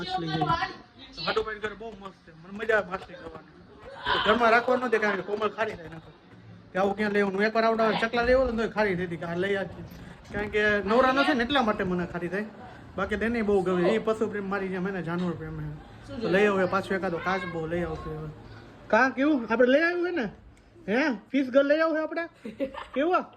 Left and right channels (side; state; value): both; identical; correlation 1.00